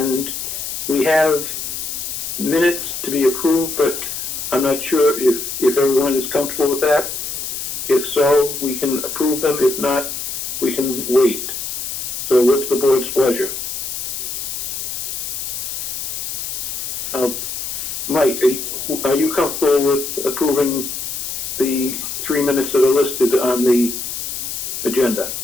we have minutes to be approved, but I'm not sure if everyone is comfortable with that. If so, we can approve them. If not, we can wait. So what's the board's pleasure? Mike, are you comfortable with approving the 3 minutes that are listed on the agenda?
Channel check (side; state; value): left; noise; hiss, 5 dB below the sound